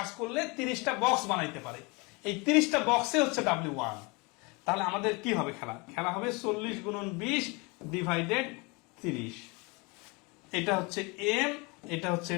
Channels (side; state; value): right; quieter; 28.2 dB